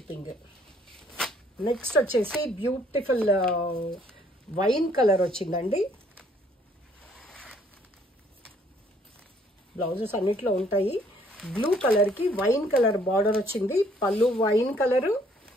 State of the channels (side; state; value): both; normal; correlation 0.63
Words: Next వచ్చేసి బ్యూటిఫుల్ వైన్ కలర్ వచ్చిందండి. బ్లౌజెస్ అన్నిట్లో ఉంటాయి. బ్లూ కలర్కి వైన్ కలర్ బార్డర్ వచ్చింది. పళ్ళు వైన్ కలరు